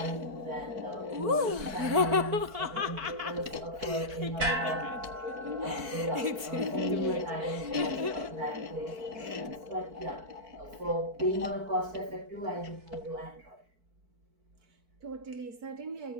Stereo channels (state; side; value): late; left; 4.5 ms